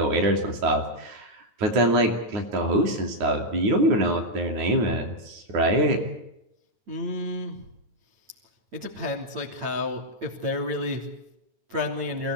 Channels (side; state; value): left; late; 9.2 ms